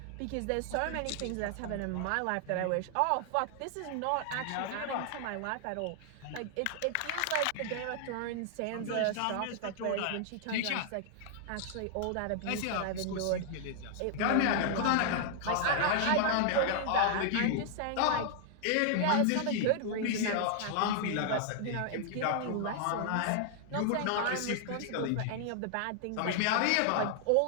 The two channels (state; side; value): different; both; correlation 0.00